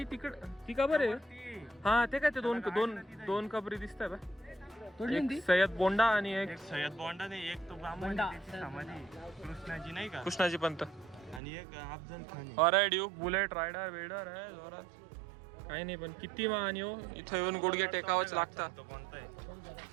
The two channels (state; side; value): drops out; left; at 11.4 s